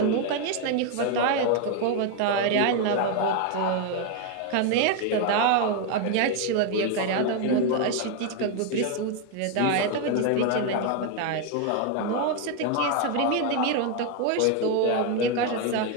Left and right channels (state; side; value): different; both; correlation 0.01